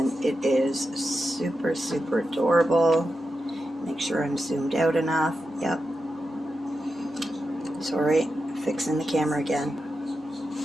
it is super adorable. Make sure I'm zoomed out enough. Yep. Sorry, fixing the camera again.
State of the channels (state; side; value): normal; both; correlation 0.89